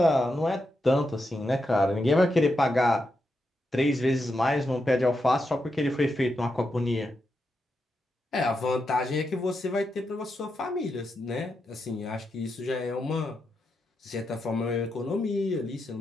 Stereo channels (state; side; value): normal; both; correlation 0.85